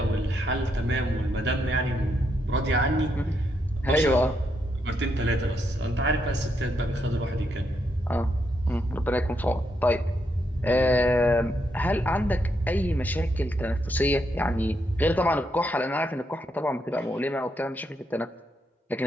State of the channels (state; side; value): normal; both; correlation 0.79